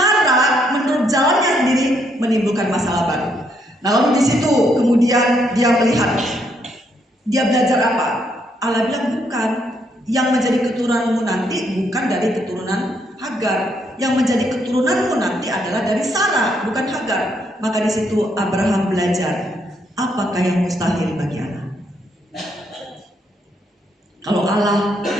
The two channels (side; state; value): both; normal; correlation 0.74